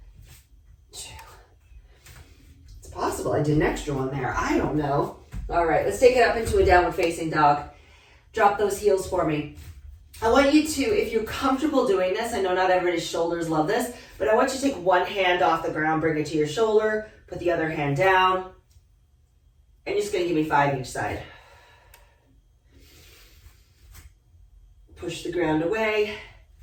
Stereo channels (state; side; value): identical; both; correlation 1.00